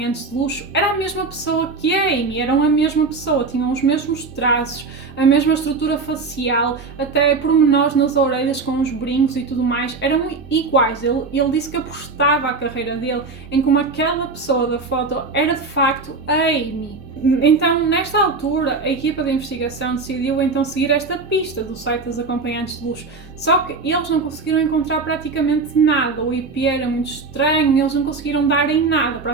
de luxo era a mesma pessoa que a Amy, eram a mesma pessoa, tinham os mesmos traços, a mesma estrutura facial, até pormenores nas orelhas com os brincos e tudo mais, eram iguais. Ele disse que apostava a carreira dele em como aquela pessoa da foto era de facto a Amy. Então, nesta altura, a equipa de investigação decidiu então seguir esta pista do site dos acompanhantes de luxo, só que eles não conseguiram encontrar praticamente nada, o IP era muito estranho, eles não conseguiram dar em nada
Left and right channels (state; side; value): quieter; left; 4.1 dB